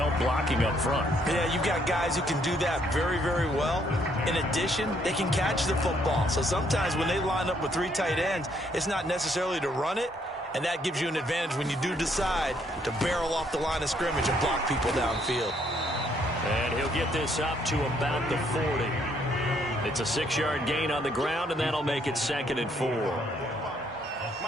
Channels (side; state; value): both; normal; correlation 0.69